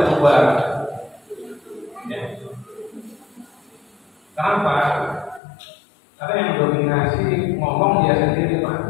bubar. Ya. Kenapa? Karena yang dominasi ngomong dia sendiri,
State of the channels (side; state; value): right; drops out; at 5.4 s